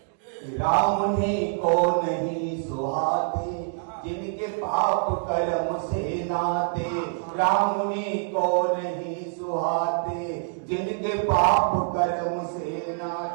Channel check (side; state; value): left; silent; digital silence